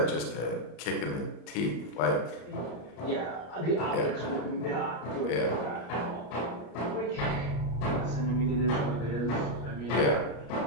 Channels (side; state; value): right; late; 34 ms